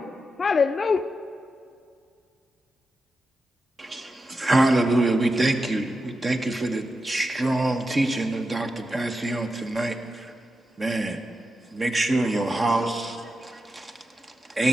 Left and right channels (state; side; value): normal; both; correlation 0.89